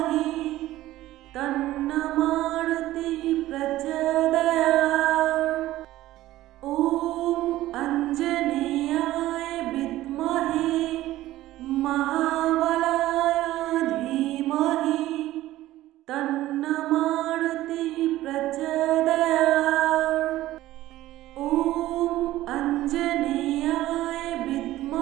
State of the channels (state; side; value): quieter; left; 15.5 dB